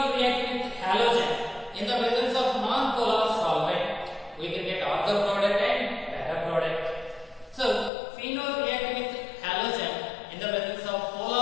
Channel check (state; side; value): drops out; right; at 7.9 s